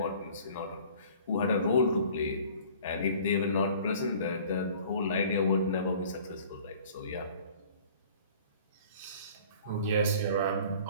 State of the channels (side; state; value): both; inverted; correlation -0.49